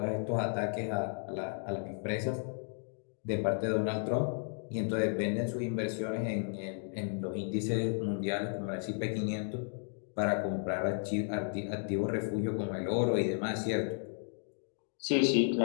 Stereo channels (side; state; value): right; silent; 55 dB below the other